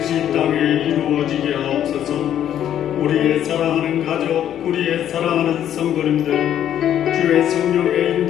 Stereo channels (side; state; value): right; quieter; 10.5 dB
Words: 이 땅에 이루어지게 하옵소서. 우리의 사랑하는 가족, 우리의 사랑하는 성도님들, 주의 성령의